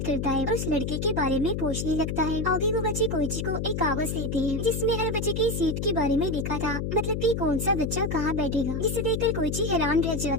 करता है और उस लड़के के बारे में पूछने लगता है। आगे वो बच्चे कोइची को एक कागज देते हैं जिसमें हर बच्चे की सीट के बारे में लिखा था, मतलब कि कौन सा बच्चा कहाँ बैठेगा। जिसे देखकर कोइची हैरान रह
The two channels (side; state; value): left; noise; hum, 2 dB below the sound